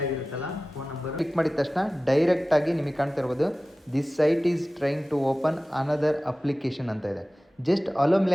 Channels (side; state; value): both; normal; correlation 0.96